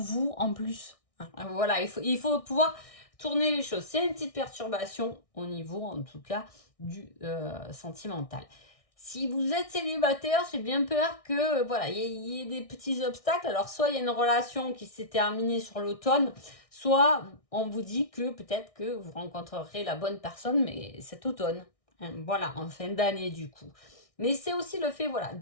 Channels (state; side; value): late; right; 1.6 ms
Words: en plus. Hein. Voilà, il faut pouvoir tourner les choses. C'est une petite perturbation au niveau, en tout cas, du sentimental. Si vous êtes célibataire, j'ai bien peur que voilà, il y ait des petits obstacles. Alors soit il y a une relation qui s'est terminée sur l'automne, soit on vous dit que peut-être que vous rencontrerez la bonne personne, mais cet automne. Hein, voilà, en fin d'année du coup. Mais c'est aussi le fait, voilà,